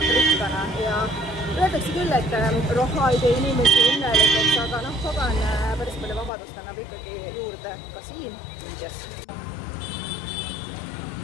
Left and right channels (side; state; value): right; drops out; at 6.3 s